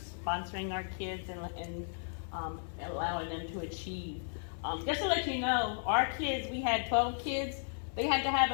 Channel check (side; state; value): right; silent; 55 dB below the other